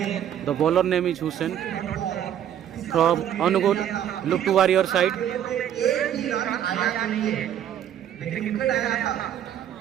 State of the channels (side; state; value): left; quieter; 10.3 dB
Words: The bowler name is Hussain from Angul. Look to warrior side.